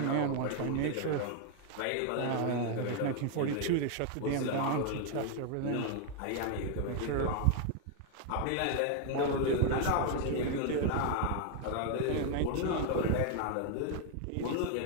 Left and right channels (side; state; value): both; different; correlation 0.00